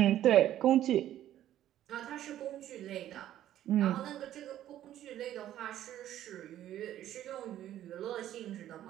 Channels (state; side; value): quieter; left; 12.3 dB